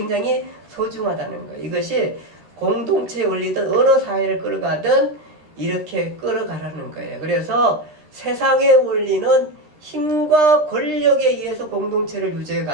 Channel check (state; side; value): late; left; 13 ms